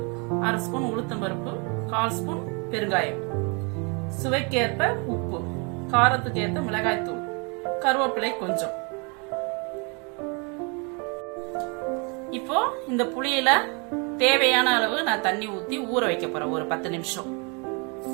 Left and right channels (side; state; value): left; quieter; 33.4 dB